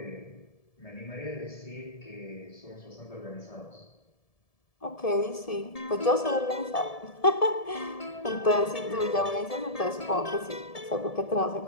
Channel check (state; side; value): late; right; 1.7 ms